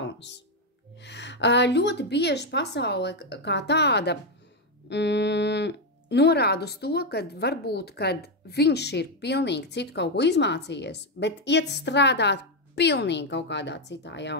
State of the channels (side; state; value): both; normal; correlation 0.05